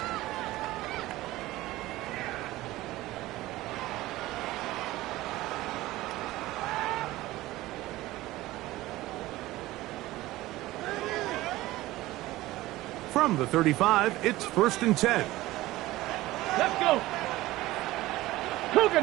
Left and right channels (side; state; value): left; quieter; 17.5 dB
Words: From the 35, it's first and 10. Let's go. Cougar